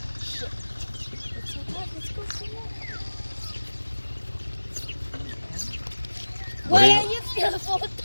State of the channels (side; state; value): both; inverted; correlation -1.00